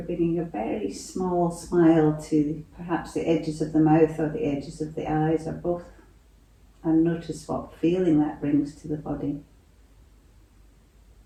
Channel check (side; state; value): both; identical; correlation 1.00